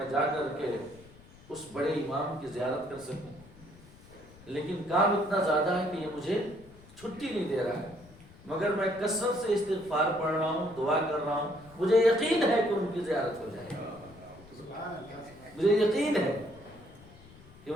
جا کر کے اس بڑے امام کی زیارت کر سکوں، لیکن کام اتنا زیادہ ہے کہ یہ مجھے چھٹی نہیں دے رہا ہے، مگر میں کثرت سے استغفار پڑھ رہا ہوں، دعا کر رہا ہوں، مجھے یقین ہے کہ ان کی زیارت ہو جائے گی، مجھے یقین ہے کہ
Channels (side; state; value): left; noise; rumble, 22 dB below the sound